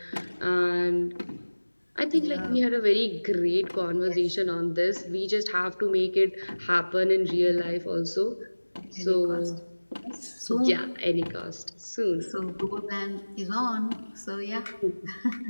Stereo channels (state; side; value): inverted; both; correlation -1.00